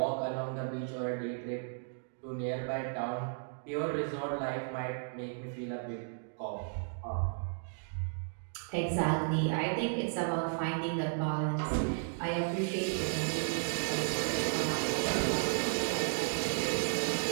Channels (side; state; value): left; silent; digital silence